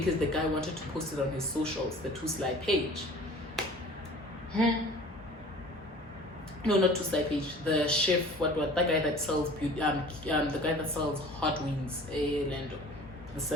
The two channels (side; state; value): both; normal; correlation 0.45